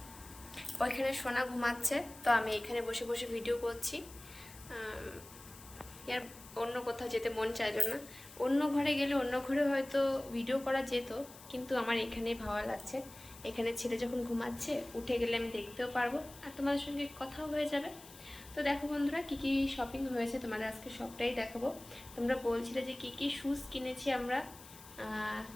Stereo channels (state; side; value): noise; left; hiss, 18 dB below the sound